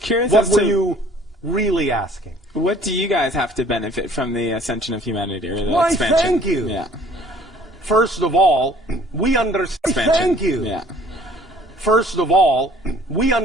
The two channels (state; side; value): normal; both; correlation 0.54